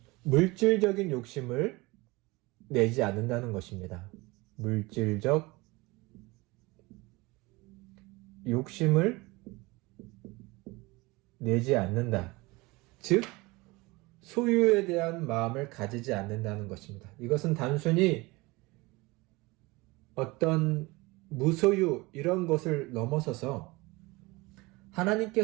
물질적인 욕심을 내지 않는다는 것입니다. 물질적 욕심을 내지 않는다. 즉, 소유에 대한 마음을 가지지 않는다는 것입니다. 이것은 단순히 어떤 무소유 이런 것을 넘어서서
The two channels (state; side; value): quieter; left; 23.2 dB